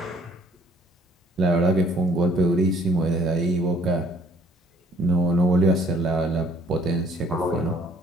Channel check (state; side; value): normal; both; correlation 0.59